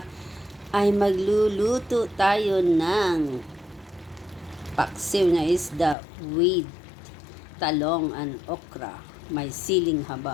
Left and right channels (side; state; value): right; drops out; at 6.0 s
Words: ay magluluto tayo ng paksiw na isda with talong and okra. May siling